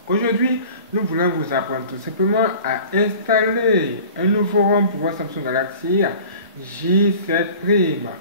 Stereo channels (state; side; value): inverted; both; correlation -0.44